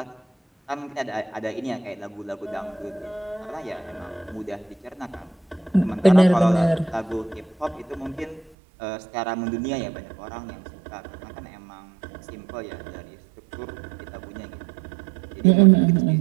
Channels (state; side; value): drops out; left; at 8.5 s